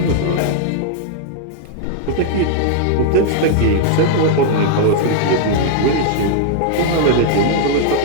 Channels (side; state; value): both; different; correlation -0.01